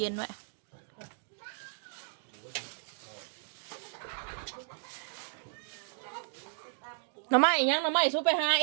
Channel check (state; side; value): silent; left; digital silence